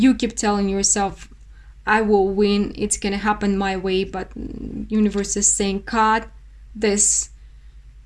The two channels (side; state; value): both; identical; correlation 1.00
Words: keep telling yourself, I will win, it's gonna happen my way. But universe is saying, cut this